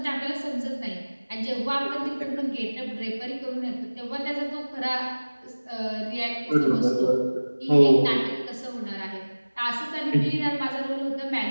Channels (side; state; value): both; inverted; correlation -1.00